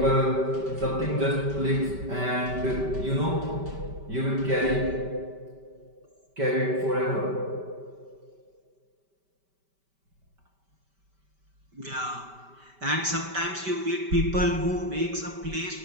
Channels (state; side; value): late; left; 5.1 ms